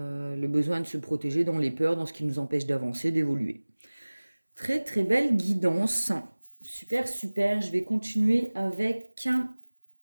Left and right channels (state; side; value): inverted; both; correlation -1.00